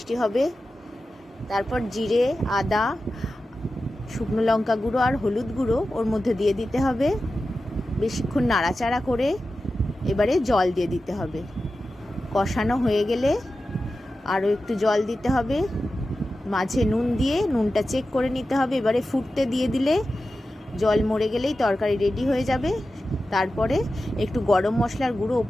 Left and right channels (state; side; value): normal; both; correlation 0.93